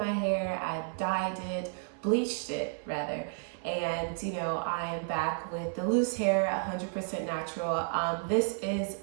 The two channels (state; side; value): silent; left; 57 dB below the other